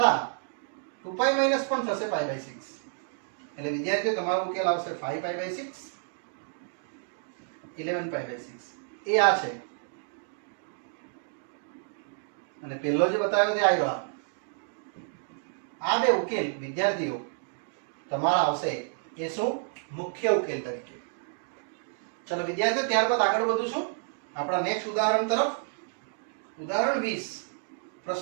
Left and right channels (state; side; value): silent; left; digital silence